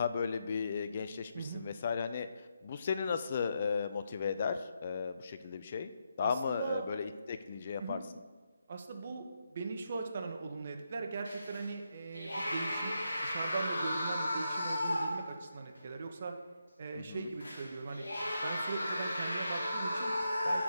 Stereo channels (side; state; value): both; inverted; correlation -0.83